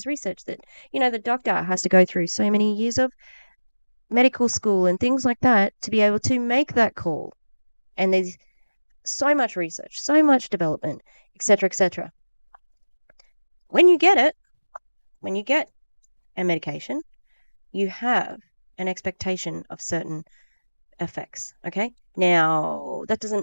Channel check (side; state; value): both; inverted; correlation -1.00